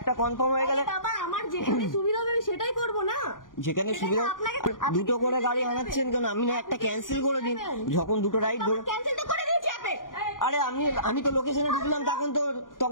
কনফার্ম হয়ে গেলে আমার যেখানে সুবিধা হবে সেটাই করবো না। যেখানে সুবিধা দুটো করে গাড়ি আনাচ্ছেন কেন? আমি না একটা ক্যান্সেল করে দিন, যখন দুটো রাইড ধরে। আরে আমি তো লোকেশনে ঢুকলাম,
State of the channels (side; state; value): right; late; 0.89 ms